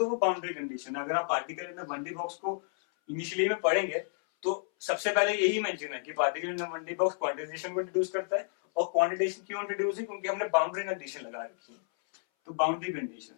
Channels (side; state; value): right; silent; 57 dB below the other